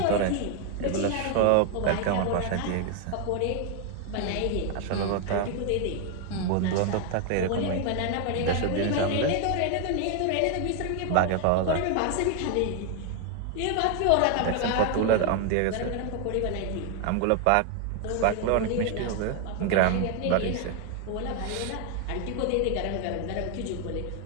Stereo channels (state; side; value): different; both; correlation 0.01